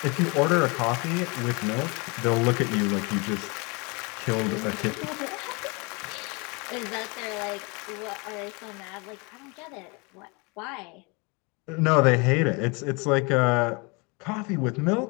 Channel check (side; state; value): right; quieter; 29.5 dB